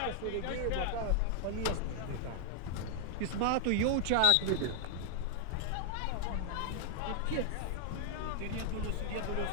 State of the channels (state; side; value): different; both; correlation 0.00